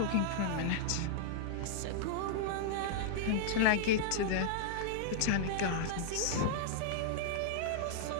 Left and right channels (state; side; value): different; both; correlation -0.01